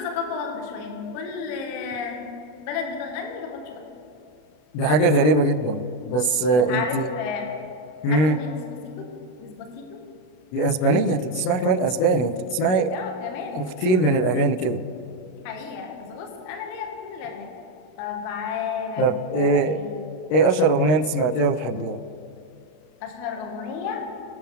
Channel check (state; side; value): late; right; 33 ms